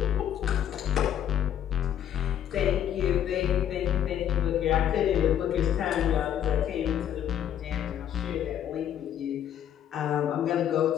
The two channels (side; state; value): right; quieter; 10.0 dB